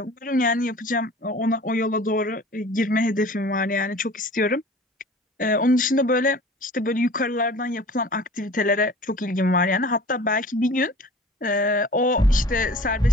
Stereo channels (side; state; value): both; normal; correlation 0.44